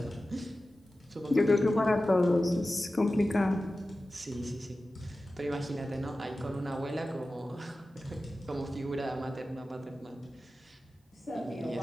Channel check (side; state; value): both; normal; correlation 0.94